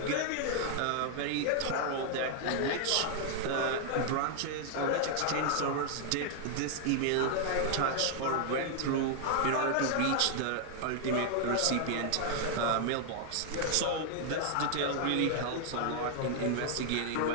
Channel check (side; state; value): both; different; correlation 0.00